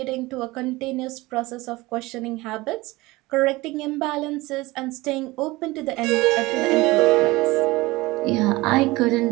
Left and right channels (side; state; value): left; quieter; 21.0 dB